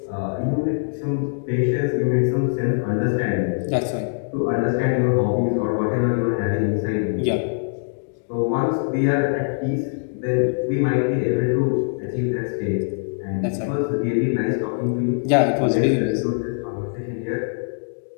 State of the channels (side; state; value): right; silent; digital silence